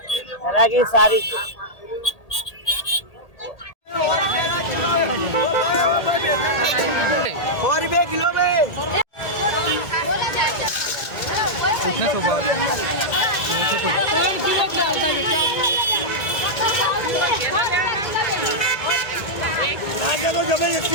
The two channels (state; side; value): late; right; 1.8 ms